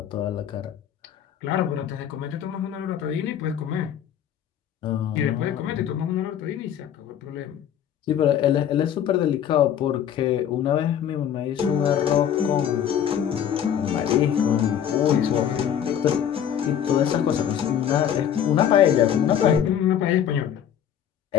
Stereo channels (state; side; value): quieter; right; 9.4 dB